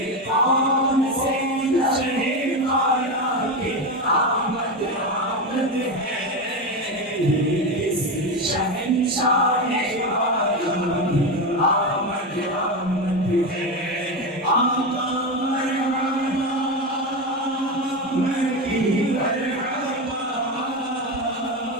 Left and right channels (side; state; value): both; normal; correlation 0.16